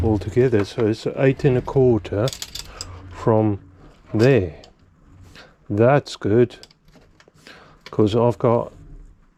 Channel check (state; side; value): identical; both; correlation 1.00